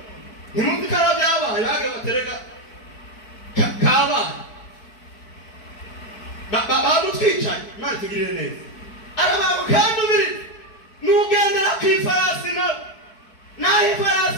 ntimuzi ko arabyo yabaye bage batereka kabaye bamutwicaye Imana tugirire neza arabantu kandi ubiri n'ugendera kw'ifarasi naho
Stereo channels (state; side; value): late; right; 4.6 ms